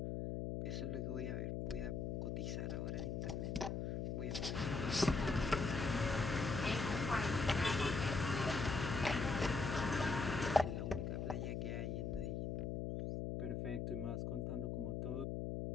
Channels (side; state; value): left; noise; hum, 2 dB below the sound